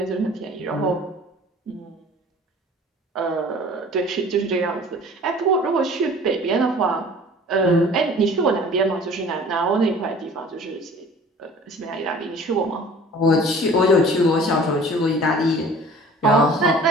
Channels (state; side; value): normal; both; correlation 0.47